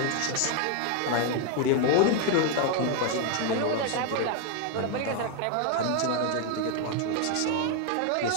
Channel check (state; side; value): different; both; correlation 0.00